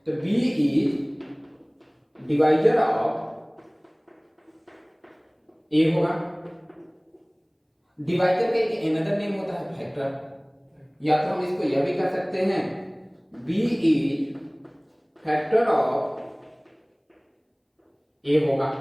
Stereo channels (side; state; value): both; identical; correlation 1.00